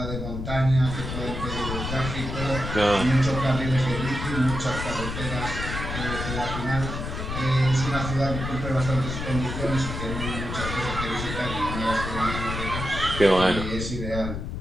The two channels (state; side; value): noise; left; rumble, 5 dB below the sound